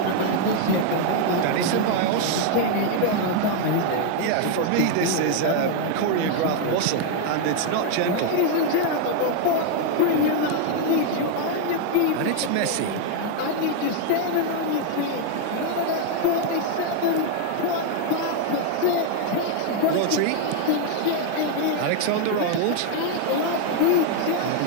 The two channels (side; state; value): both; different; correlation 0.00